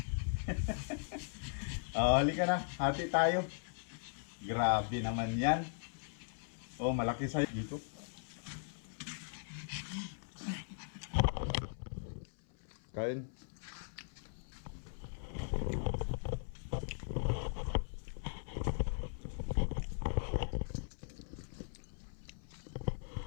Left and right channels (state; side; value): silent; right; 52 dB below the other